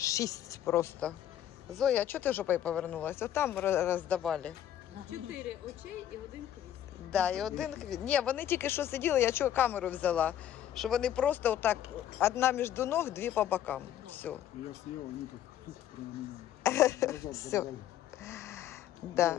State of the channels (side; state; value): right; quieter; 11.0 dB